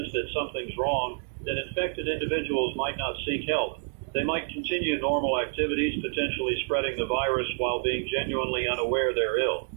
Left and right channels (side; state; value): left; silent; digital silence